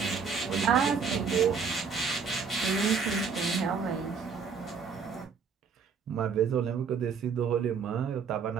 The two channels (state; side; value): quieter; left; 5.8 dB